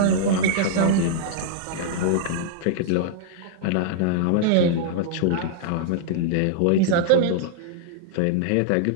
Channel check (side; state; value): both; different; correlation -0.01